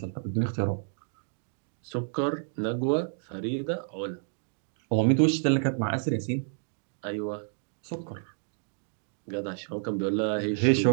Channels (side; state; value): left; silent; digital silence